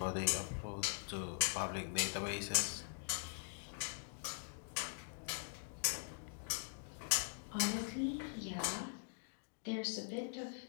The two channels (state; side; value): silent; right; digital silence